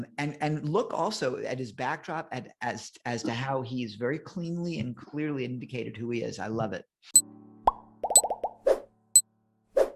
look also at his backdrop as to how he's very cleanly and clearly indicated who he is. I love it.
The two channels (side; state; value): both; identical; correlation 1.00